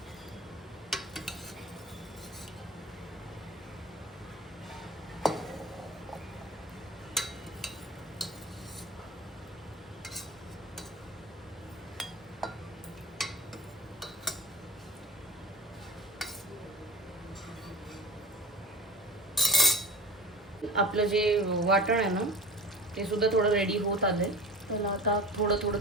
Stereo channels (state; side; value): normal; both; correlation 0.34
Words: आपलं जे वाटण आहे ना ते सुद्धा थोडं रेडी होत आलंय. त्याला आता थोडं थोडं